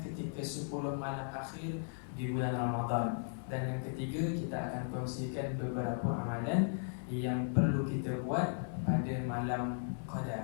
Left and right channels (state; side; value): silent; right; digital silence